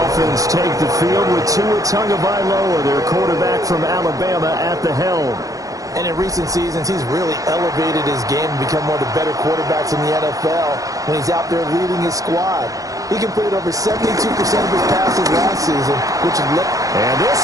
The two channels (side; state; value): left; late; 0.17 ms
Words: take the field with Tua Tagovailoa, their quarterback from Alabama, at the helm. And in recent seasons, he's really elevated his game and become one of the better quarterbacks in the NFL when he's out there leading his squad. He completed over 72% of his passes last season, which is... And this